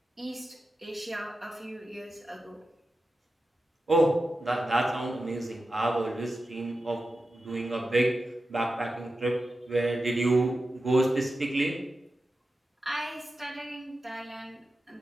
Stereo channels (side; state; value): both; normal; correlation 0.91